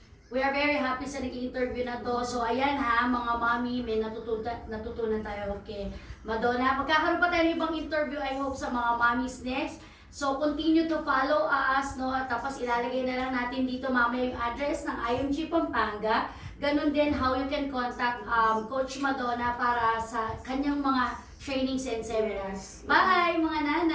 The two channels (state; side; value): identical; both; correlation 1.00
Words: We are very happy sa naging interview na to. So, ayan ha, mga mami, may natutunan tayo. Okay, Madonna, magkakaroon pa tayo ng ibang interview, I hope, sa mga mommies next. So, continue to follow us, no? Tapos, ilalagay na lang natin dito mamaya yung address ng IMG Pampanga. Ganon din, how you can contact Coach Madonna para sa kanyang mga trainings and seminars. Bye, mga